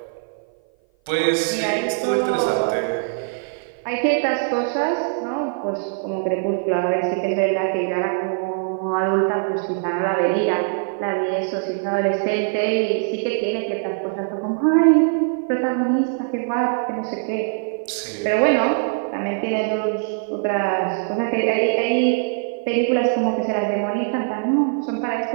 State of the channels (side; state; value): left; silent; 56 dB below the other